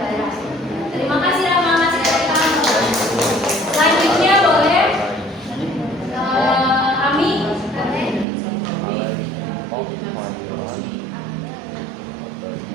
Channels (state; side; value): drops out; left; at 8.2 s